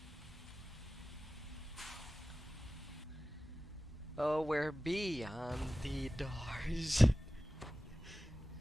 Oh, we're beyond the doors.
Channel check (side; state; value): both; normal; correlation 0.95